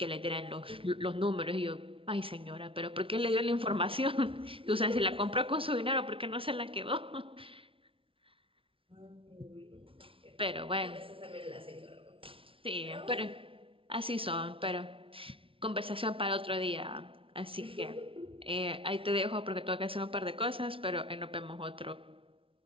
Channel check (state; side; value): late; left; 0.26 ms